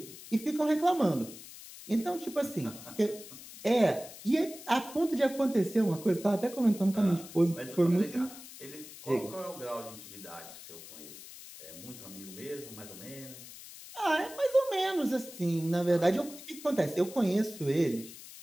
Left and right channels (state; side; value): noise; left; hiss, 15 dB below the sound